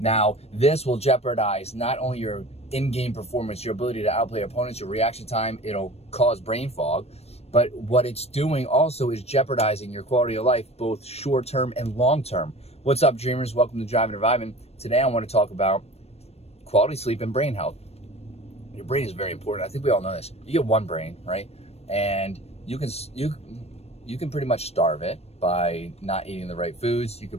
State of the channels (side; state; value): right; late; 0.30 ms